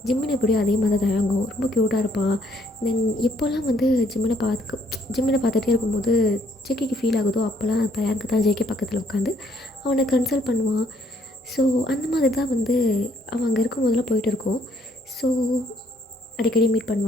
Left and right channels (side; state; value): both; normal; correlation 0.67